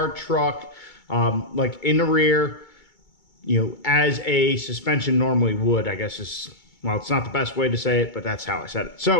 truck like in the rear, you know, as a suspension normally would, I guess is. Well, it's not the best way to say it, but that's how I said it.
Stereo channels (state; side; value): late; right; 2.3 ms